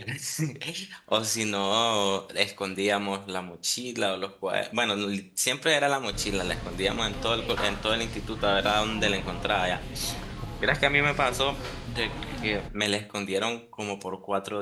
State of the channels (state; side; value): identical; both; correlation 1.00